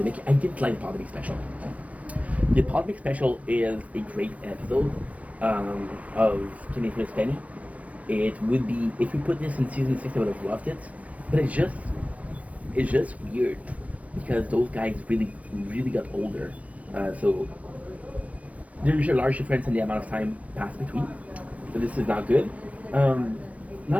I didn't like the Polymic special. The Polymic special is a great episode of Kenny vs. Penny. It would be, if we put this in season 6, I would have loved it. But it's just weird because those guys really got older. So there's a large difference in the amount of time passed between. So this is not good.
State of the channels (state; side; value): late; left; 0.068 ms